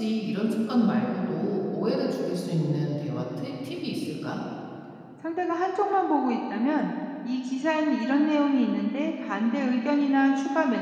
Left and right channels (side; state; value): both; identical; correlation 1.00